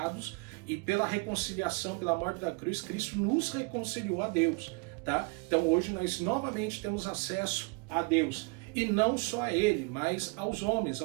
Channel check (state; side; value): quieter; left; 30.1 dB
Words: e pela reconciliação, pela morte da cruz, Cristo nos reconciliou a Deus, tá? Então hoje nós novamente temos acesso a Deus. E não só a ele, mas aos homens,